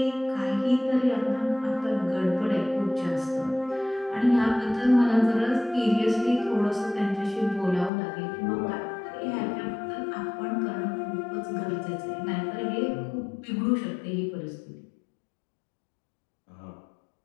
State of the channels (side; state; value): right; drops out; at 7.9 s